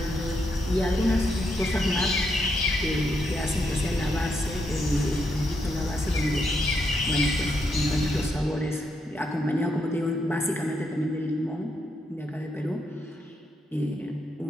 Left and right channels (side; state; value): both; normal; correlation 0.80